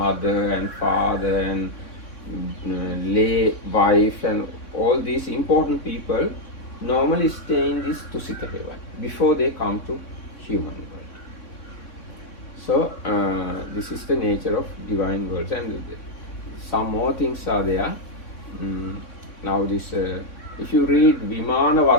and father and lay wife and all these important people normally stay in this Tusita heaven before they come to human world. So this is the nature of divine worlds, and some more things are there. Now this, if you read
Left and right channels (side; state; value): right; late; 3.6 ms